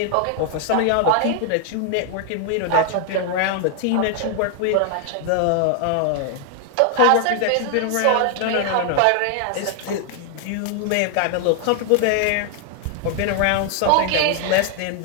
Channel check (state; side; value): different; both; correlation 0.00